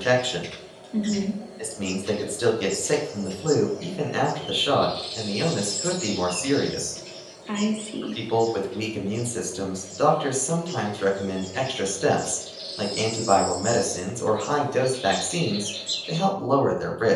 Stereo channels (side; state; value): both; identical; correlation 1.00